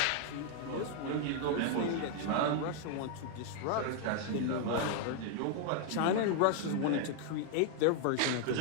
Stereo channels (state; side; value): different; both; correlation 0.00